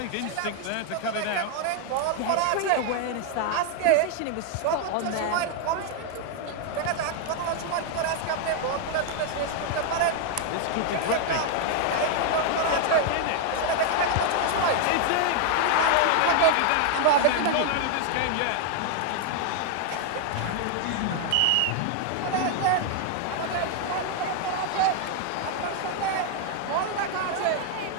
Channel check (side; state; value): both; different; correlation 0.00